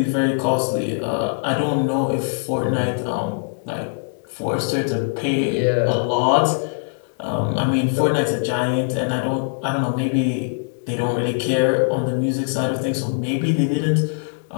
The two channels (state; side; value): silent; right; digital silence